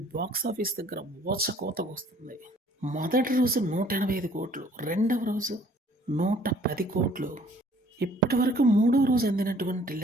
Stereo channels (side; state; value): both; normal; correlation 0.58